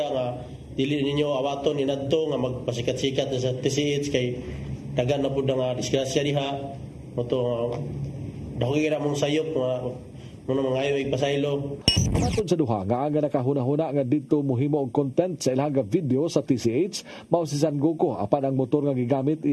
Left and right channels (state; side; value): identical; both; correlation 1.00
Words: nga dili ninyo awaton inadto nga magpasikat-sikat sa TCH kay dagan na pud nga disgrasya diha. Moto dako gira mong sayop Muna mga ayo pasaylo. Matod sa duha nga aga nakahuna-huna nga dito mohimo og content sa ilang video sa TCH mao si San Goku apan ang motor nga gigamit